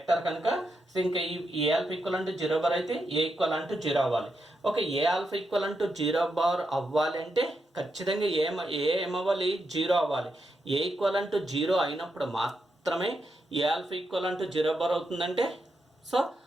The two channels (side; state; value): both; normal; correlation 0.84